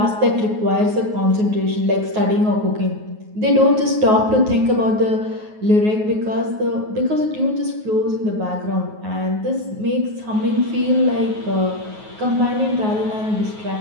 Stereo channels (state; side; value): late; left; 9.4 ms